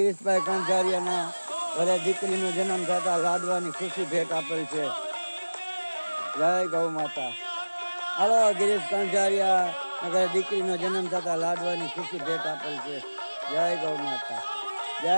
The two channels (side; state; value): both; inverted; correlation -1.00